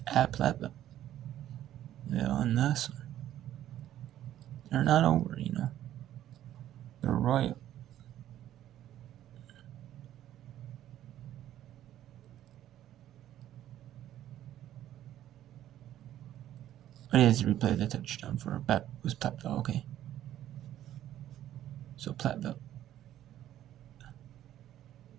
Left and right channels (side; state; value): left; quieter; 12.3 dB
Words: at Platteville. Yeah, on this one. They're not over, They're royal. But it is replay the touchdown for was Platteville, okay. So Platteville.